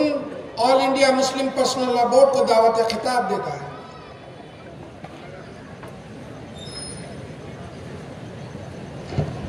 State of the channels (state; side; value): identical; both; correlation 1.00